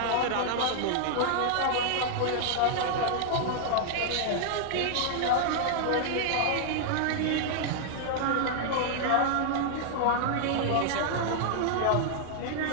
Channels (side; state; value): both; different; correlation -0.01